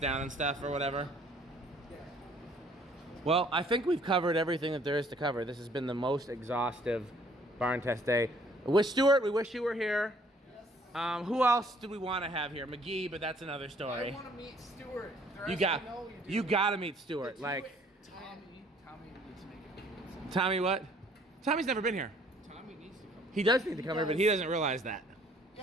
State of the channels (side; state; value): both; normal; correlation 0.60